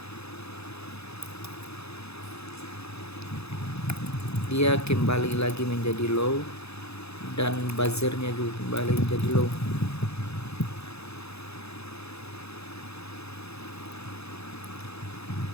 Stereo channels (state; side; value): late; right; 0.79 ms